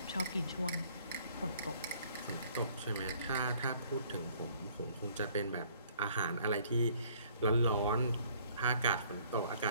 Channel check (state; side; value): inverted; both; correlation -0.59